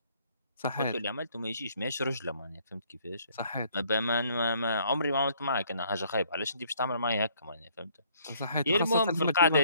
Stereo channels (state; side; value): inverted; both; correlation -0.63